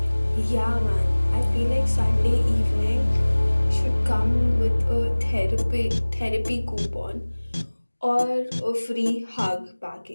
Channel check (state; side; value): inverted; both; correlation -1.00